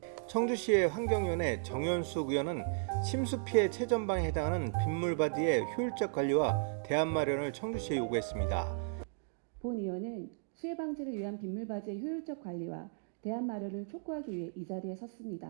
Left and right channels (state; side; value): silent; left; digital silence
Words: 청주시의 환경위원회 정현숙 의원은 침수 피해 최전방에 해당하는 빗물바디의 효율적 관리와 대안 마련을 청주시에 요구했습니다. 본 의원은 수해 방지를 위한 빗물바지의 효율적 관리와 대안 마련을 촉구하기 위해 이 자리에